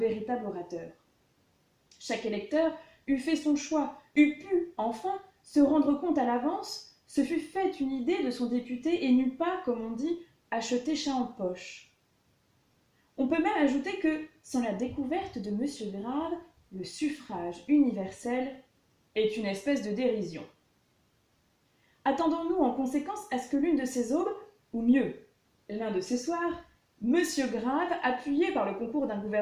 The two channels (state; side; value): identical; both; correlation 1.00